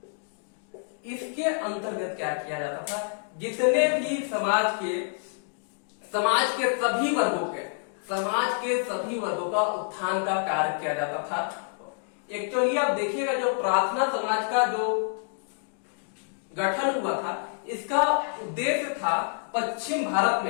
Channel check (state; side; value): silent; right; digital silence